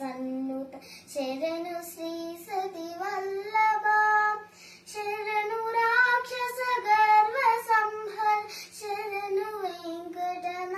శరణు శ్రీ సతి వల్లభ శరణు రాక్షస గర్వ సంహర శరణు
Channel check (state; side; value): identical; both; correlation 1.00